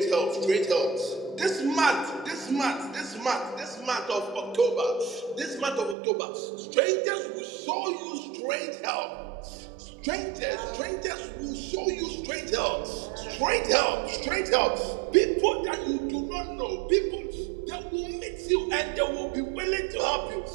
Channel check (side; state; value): left; drops out; at 6.0 s